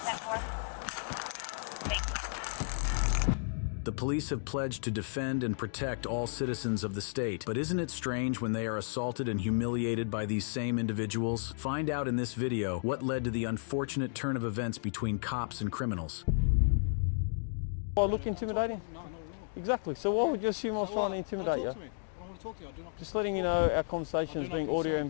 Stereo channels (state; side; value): silent; right; digital silence